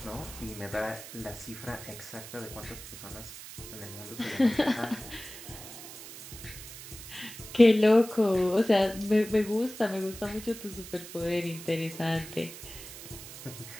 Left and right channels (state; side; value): noise; right; hiss, 13 dB below the sound